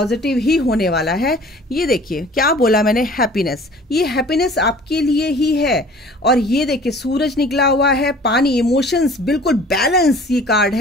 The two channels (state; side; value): normal; both; correlation 0.48